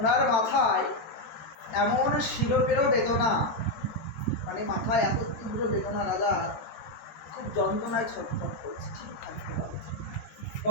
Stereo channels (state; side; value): late; right; 13 ms